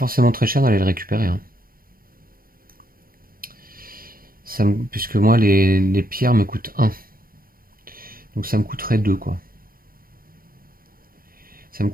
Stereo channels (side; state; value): left; late; 0.42 ms